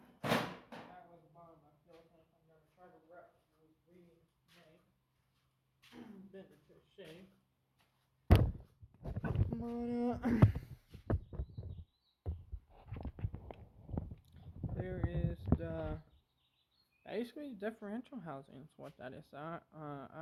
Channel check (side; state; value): both; identical; correlation 1.00